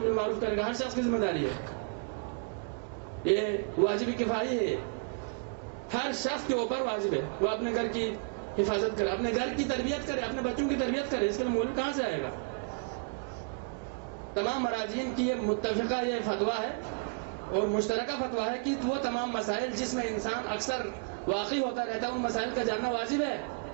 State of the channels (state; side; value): quieter; left; 39.0 dB